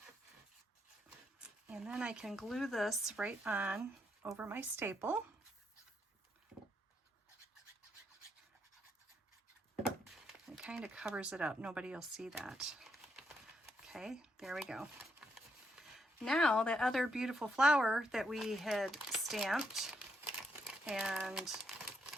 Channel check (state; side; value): normal; both; correlation 0.77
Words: And then I can glue this right on over my staple. It kind of covers it up. Nobody will see that. Okay, there we go. Now that other beautiful flower that we had stamped and